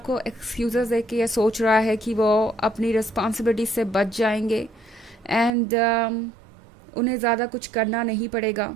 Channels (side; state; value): left; drops out; at 5.5 s